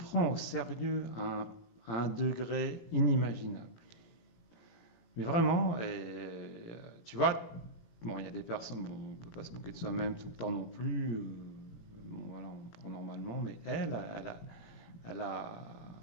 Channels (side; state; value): right; late; 18 ms